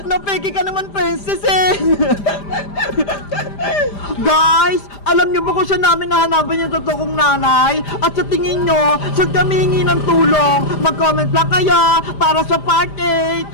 Napeki ka naman, Princess eh. Guys, alam niyo ba kung saan namin nahanapan yung totoo kong nanay? At sa tingin niyo, saan kami hingi ng tulong? Mag-comment lang kayo para sa part 8.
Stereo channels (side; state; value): right; late; 5.0 ms